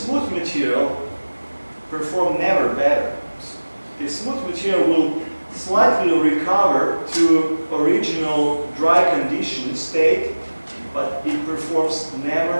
material perform never better. The smooth material will slightly recover to original dry condition state, but it performs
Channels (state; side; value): inverted; both; correlation -1.00